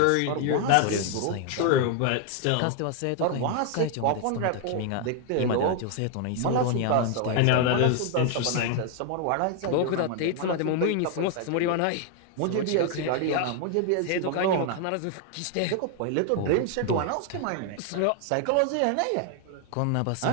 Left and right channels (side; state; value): both; different; correlation 0.00